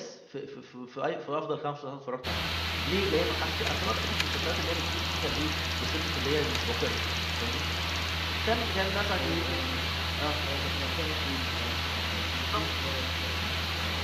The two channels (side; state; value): both; identical; correlation 1.00